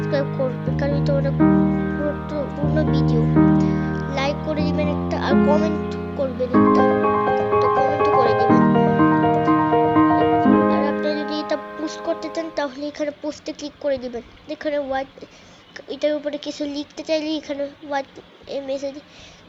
করবেন, কারণ এটা অনেক গুরুত্বপূর্ণ ভিডিও। লাইক করে দিবেন একটা, আর কমেন্ট করবেন একটা, তো কমেন্টও করে দিবেন। আর আপনারা যদি এটা পোস্ট করতে চান তাহলে এখানে পোস্টে ক্লিক করে দিবেন। এখানে হোয়াইট, এটার উপরে কিছু লিখতে চাইলে এখানে হোয়াইট মেসেজ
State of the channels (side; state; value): both; identical; correlation 1.00